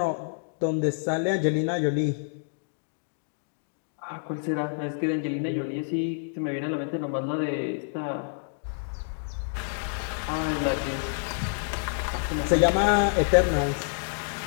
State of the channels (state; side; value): silent; right; digital silence